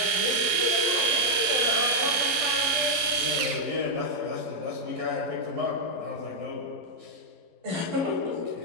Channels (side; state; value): left; late; 12 ms